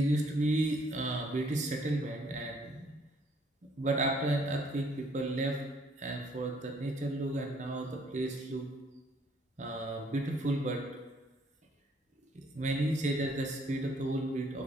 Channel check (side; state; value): both; normal; correlation 0.64